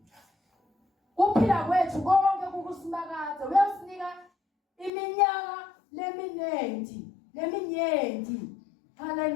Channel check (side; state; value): right; drops out; at 4.9 s